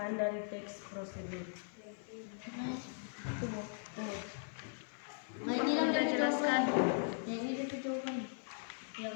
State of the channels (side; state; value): right; silent; 52 dB below the other